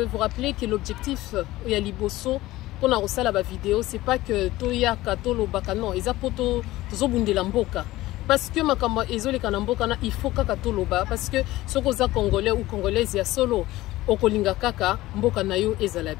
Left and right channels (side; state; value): right; quieter; 17.3 dB